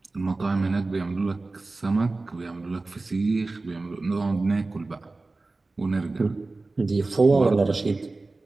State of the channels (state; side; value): quieter; left; 3.4 dB